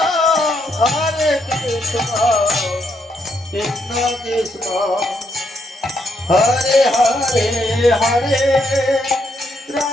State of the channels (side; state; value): both; normal; correlation 0.76